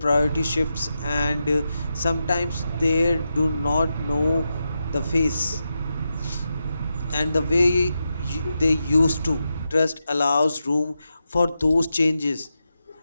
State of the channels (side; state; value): both; inverted; correlation -0.88